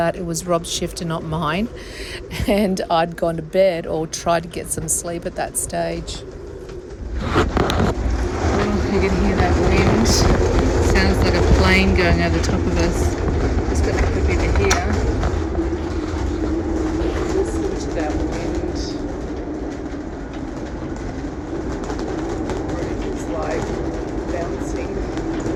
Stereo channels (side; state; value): both; identical; correlation 1.00